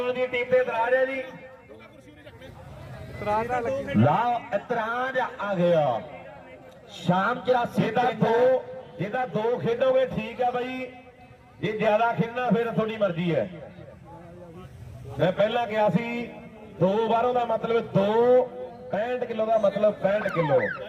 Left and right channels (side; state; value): both; identical; correlation 1.00